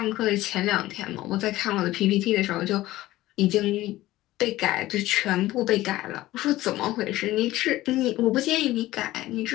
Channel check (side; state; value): right; quieter; 16.5 dB